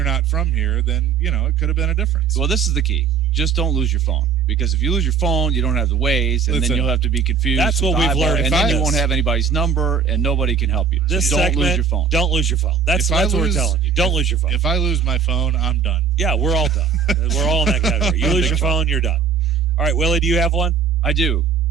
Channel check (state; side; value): quieter; left; 6.3 dB